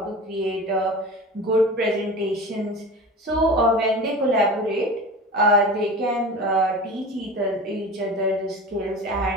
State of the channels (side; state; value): both; normal; correlation 0.34